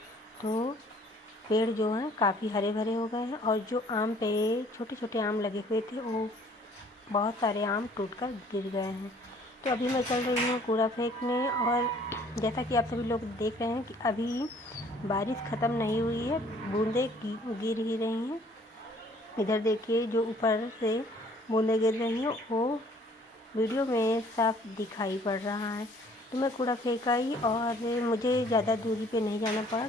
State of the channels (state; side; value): normal; both; correlation 0.57